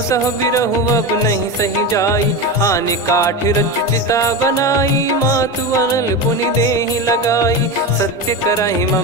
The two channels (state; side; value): normal; both; correlation 0.20